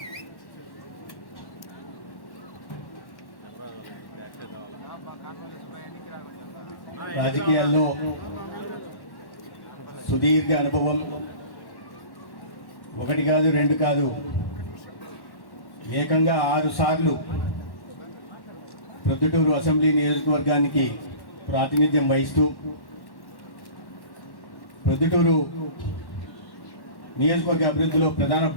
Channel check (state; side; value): late; right; 1.1 ms